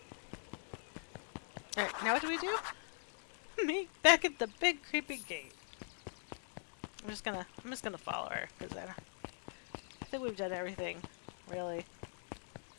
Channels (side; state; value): right; silent; digital silence